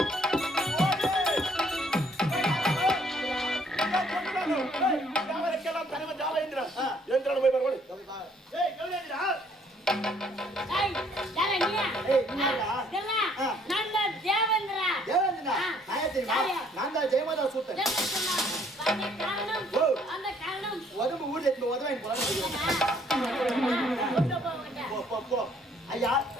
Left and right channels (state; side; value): normal; both; correlation 0.63